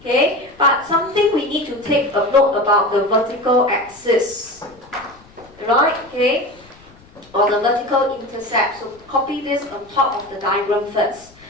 but something we need to take a note about the vertical axis. Right, okay, or the vertical intercept. So copy this on top of the diagram first.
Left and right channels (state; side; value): noise; left; rumble, 26 dB below the sound